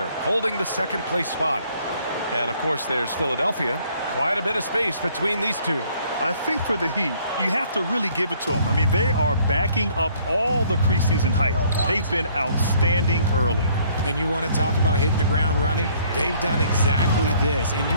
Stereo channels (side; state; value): both; inverted; correlation -0.61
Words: holding the second place spot. And, of course, there's Philadelphia. Quite a bit of space between these two. I think for the Heat, you have to really give it to them. I mean, they are backing up all the preseason hype. They've been outstanding early. And you want to talk about hitting the ground running? They've done exactly this. And